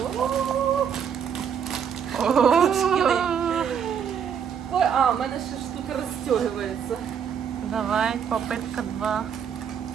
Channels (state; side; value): quieter; left; 7.7 dB